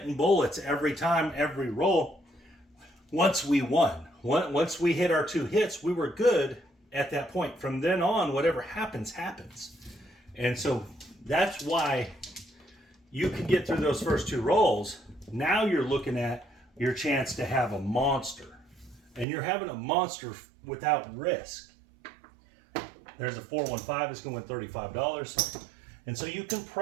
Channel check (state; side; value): drops out; left; at 19.2 s